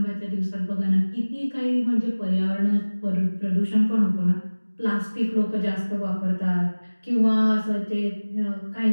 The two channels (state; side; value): inverted; both; correlation -1.00